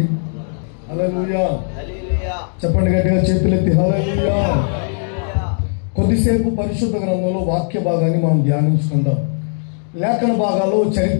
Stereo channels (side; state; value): right; silent; digital silence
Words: హల్లెలూయా. చెప్పండి గట్టిగా, చేతులెత్తి హల్లెలూయా. కొద్దిసేపు పరిశుద్ధ గ్రంథంలో వాక్య భాగాన్ని మనం ధ్యానించుకుందాం. లేఖన భాగాల్లో